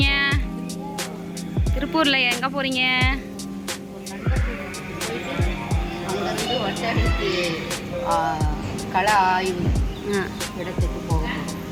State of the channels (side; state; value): both; identical; correlation 1.00